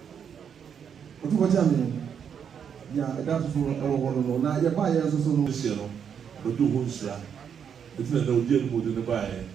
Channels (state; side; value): quieter; left; 7.7 dB